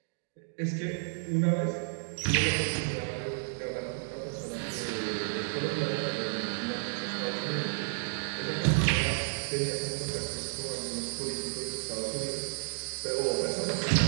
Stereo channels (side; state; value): left; silent; digital silence